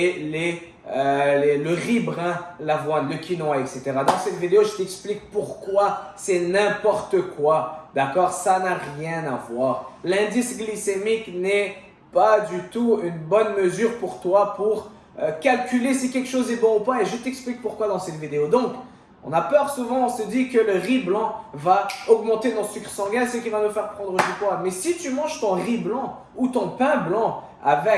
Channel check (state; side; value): identical; both; correlation 1.00